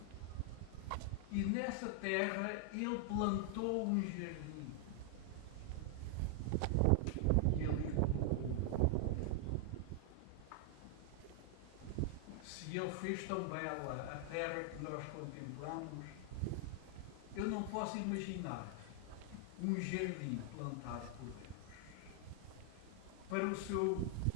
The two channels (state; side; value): different; both; correlation 0.00